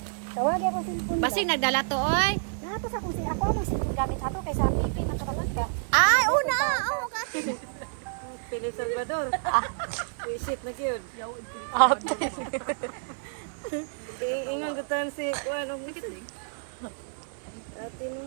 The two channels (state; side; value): silent; left; 59 dB below the other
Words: Tawag ako sin Basig nagdala to oy. Dapat sa kung si ako ang sin gamit ato kaysa pipi na kamalanda. Ay, una. Oh, ka. Pili Salvador. Visit na gyud. Ate. Ingon gutan si kuan og ate